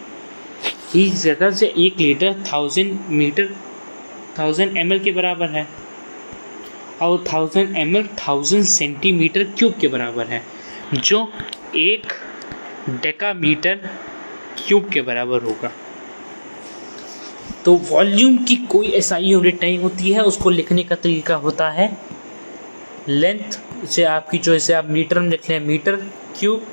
इस जगह से 1 लीटर 1000 ml के बराबर है, और 1000 ml 1000 सेंटीमीटर क्यूब के बराबर है, जो 1 डेकामीटर क्यूब के बराबर होगा। तो वॉल्यूम की कोई ऐसा यूनिट नहीं होती है, उसको लिखने का तरीका होता है लेंथ से आपकी, जो इसे आप मीटर में लिख लें, metre cube,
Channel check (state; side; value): inverted; both; correlation -1.00